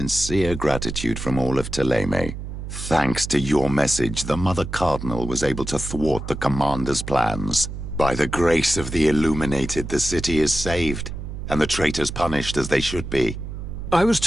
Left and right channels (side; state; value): right; noise; hum, 8 dB below the sound